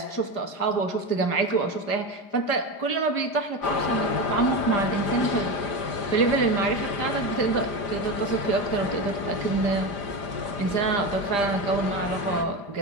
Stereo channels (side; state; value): right; late; 5.0 ms